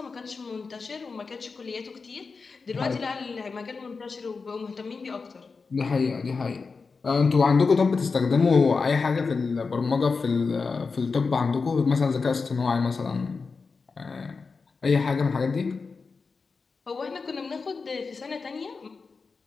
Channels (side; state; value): right; quieter; 4.6 dB